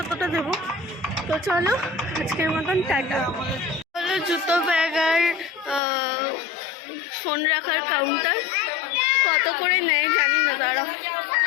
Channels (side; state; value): right; drops out; at 5.8 s